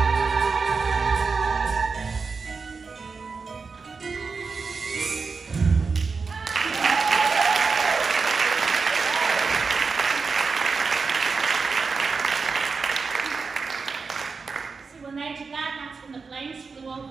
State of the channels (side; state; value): left; quieter; 4.8 dB